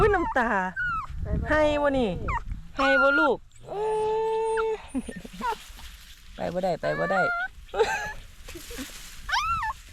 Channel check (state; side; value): identical; both; correlation 1.00